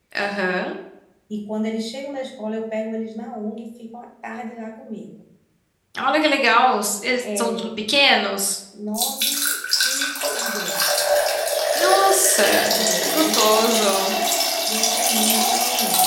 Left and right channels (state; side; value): identical; both; correlation 1.00